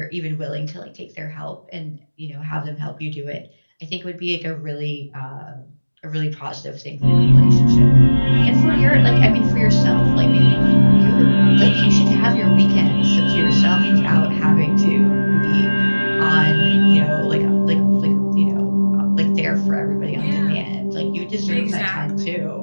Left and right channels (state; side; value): inverted; both; correlation -1.00